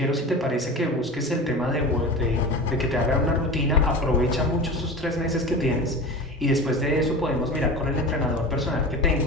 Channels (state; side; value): normal; both; correlation 0.31